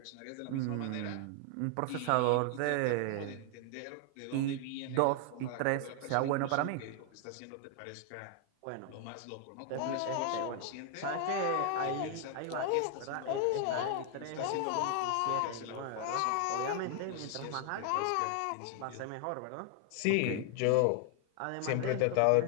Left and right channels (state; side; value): different; both; correlation 0.00